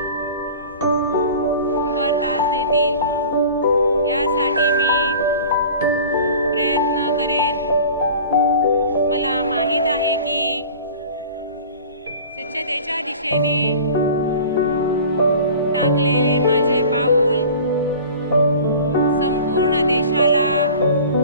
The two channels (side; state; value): both; inverted; correlation -0.41